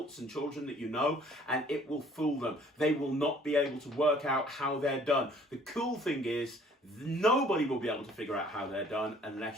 and children that you know, and it will fool them. They will not be able to work out how they're done. The cool thing is, nobody will be able to figure out how they're done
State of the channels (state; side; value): normal; both; correlation 0.57